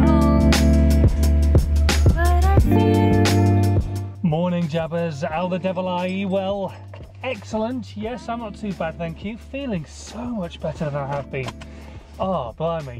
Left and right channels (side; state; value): both; identical; correlation 1.00